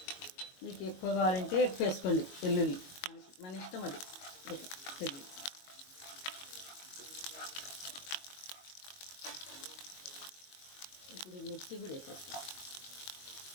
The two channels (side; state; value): right; late; 22 ms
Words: మీకు ఎక్కువ కావాలంటే ఎక్కువ వేసుకోండి వెల్లుల్లి, మన ఇష్టం అది. వెల్లుల్లి ఇప్పుడు మిర్చి కూడా వేసేస్తాం.